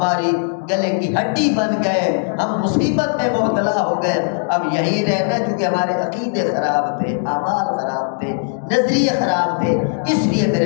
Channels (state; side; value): silent; right; digital silence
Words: گلے کی ہڈی بن گئے، ہم مصیبت میں مبتلا ہو گئے، اب یہی رہنا چونکہ ہمارے عقیدے خراب تھے، اعمال خراب تھے، نظریے خراب تھے، اس لیے